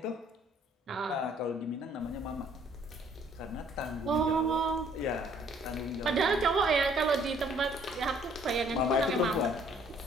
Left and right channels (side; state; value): both; normal; correlation 0.61